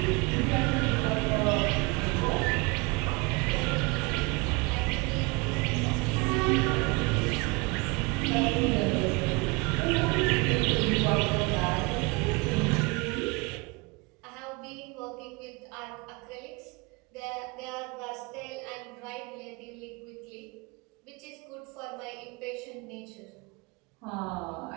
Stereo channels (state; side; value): quieter; left; 27.2 dB